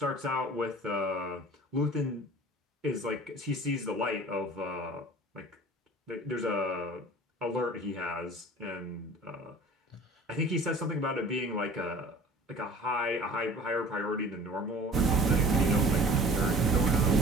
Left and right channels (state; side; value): normal; both; correlation 0.45